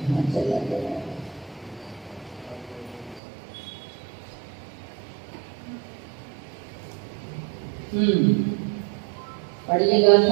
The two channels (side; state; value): left; drops out; at 3.2 s